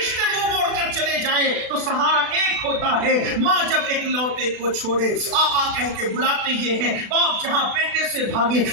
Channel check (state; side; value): late; left; 36 ms